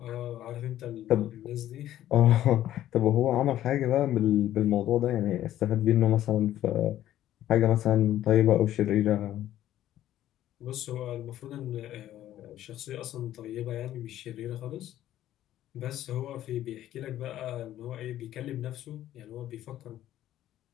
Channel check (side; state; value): right; quieter; 12.8 dB